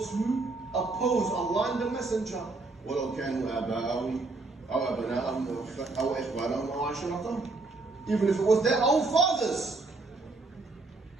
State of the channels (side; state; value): left; quieter; 3.5 dB